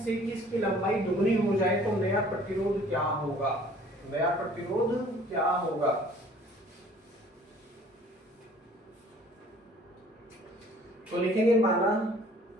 कि इसकी लंबाई दुगनी हो जाए तो नया प्रतिरोध क्या होगा। नया प्रतिरोध क्या होगा। तो लिखेंगे माना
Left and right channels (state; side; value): normal; both; correlation 0.53